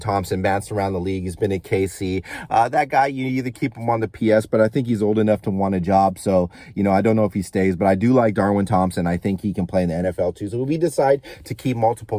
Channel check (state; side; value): identical; both; correlation 1.00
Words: bounced around the league. He's been at KC. That guy, you either keep him on the PS, but I think he's old enough to want a job. So, you know, I don't know if he stays, but I do like Darwin Thompson. I think he can play in the NFL too. So if we decide to keep